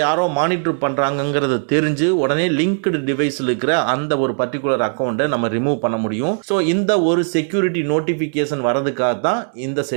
யாரோ மானிட்டர் பண்றாங்கிறது தெரிஞ்சு உடனே லிங்க்டு டிவைஸ்ல இருக்கிற அந்த ஒரு பர்டிகுலர் அக்கௌண்ட்டை நம்ம ரிமூவ் பண்ண முடியும். சோ இந்த ஒரு செக்யூரிட்டி நோட்டிபிகேஷன் வரதுக்காக தான் இந்த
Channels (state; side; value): silent; left; digital silence